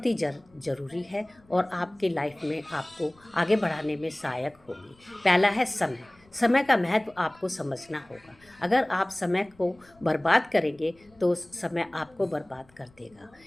ही ज़रूरी है और आपके लाइफ में आपको आगे बढ़ाने में सहायक होगी। पहला है समय। समय का महत्व आपको समझना होगा। अगर आप समय को बर्बाद करेंगे तो समय आपको बर्बाद कर देगा।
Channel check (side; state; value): left; noise; rumble, 30 dB below the sound